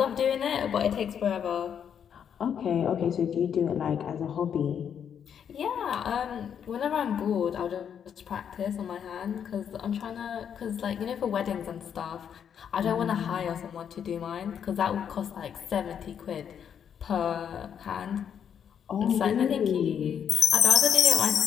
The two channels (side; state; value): right; quieter; 8.2 dB